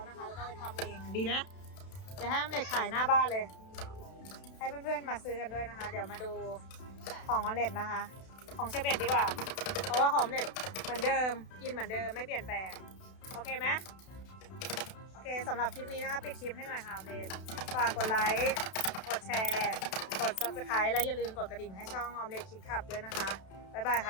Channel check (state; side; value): late; right; 32 ms